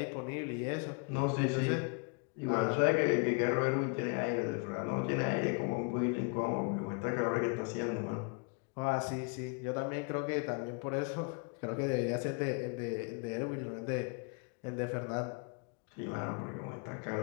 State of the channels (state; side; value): quieter; right; 35.5 dB